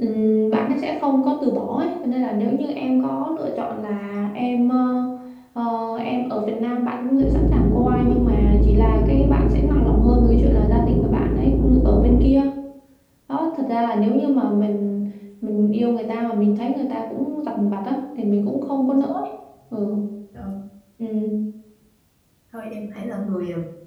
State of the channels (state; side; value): identical; both; correlation 1.00